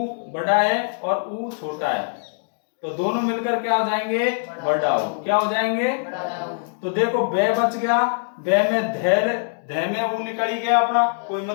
बड़ा है और ऊ छोटा है, तो दोनों मिलकर क्या हो जाएंगे, बड़ा ऊ। क्या हो जाएंगे, तो देखो बे बच गया, बे में धे में ऊ निकल ही गया अपना, कोई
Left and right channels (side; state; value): right; silent; digital silence